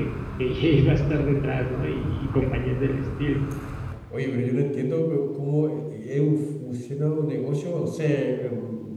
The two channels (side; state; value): both; identical; correlation 1.00